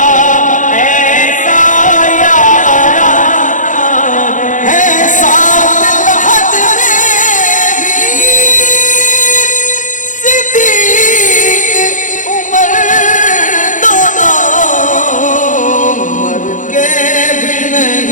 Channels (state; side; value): late; right; 0.37 ms